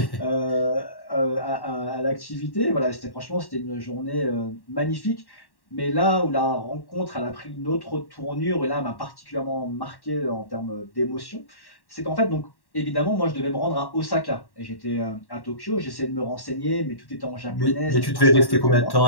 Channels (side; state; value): right; late; 1.1 ms